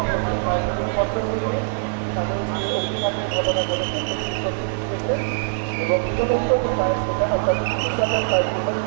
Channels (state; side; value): silent; left; 64 dB below the other